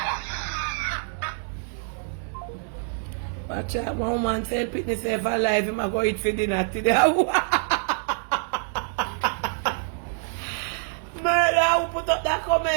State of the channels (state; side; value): silent; left; digital silence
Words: Watch out, one woman say pick himself alive, him a go eat for dinner today. Murder, who put up that